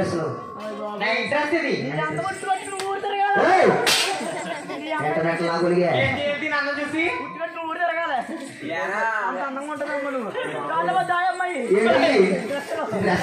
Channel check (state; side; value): identical; both; correlation 1.00